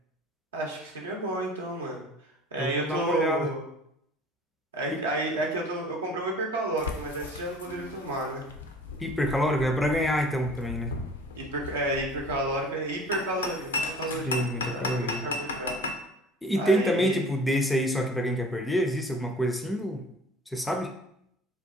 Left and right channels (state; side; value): normal; both; correlation 0.46